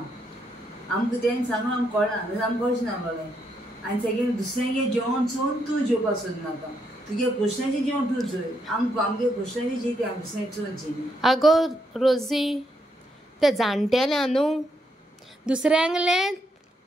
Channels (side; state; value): both; normal; correlation 0.78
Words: आमकां तें सांगून आमकां कळना नाजाल्यार आमकां कळचें नासलोलें. आनी सेकेंड दुसऱ्यांगे जेवण चोवन तूं जेवपाक सोदनाका तुगे क्वेश्चनाचें जेवण तूं चोय आमगे क्वेश्चनाचें जेवता आमी दुसऱ्यांक चोवनची. आगो रोजी ते जाणटेल्या न्हू दुसऱ्यांगलें